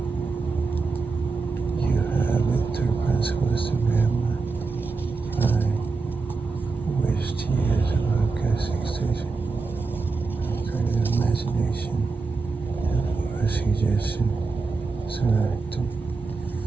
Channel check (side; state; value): left; quieter; 4.1 dB